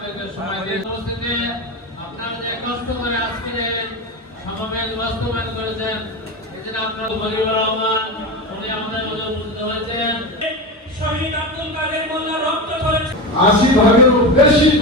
সময় দিয়ে উপস্থিতি, আপনারা যে কষ্ট করে আজকের সমাবেশ বাস্তবায়ন করেছেন, এজন্য আপনার গরিবুর রহমান উনি আমাদের মধ্যে উপস্থিত হয়েছেন। শহীদ আব্দুল কাদের মোল্লা রক্ত করেছে ৮০ ভাগেরও বেশি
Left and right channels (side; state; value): both; normal; correlation 0.21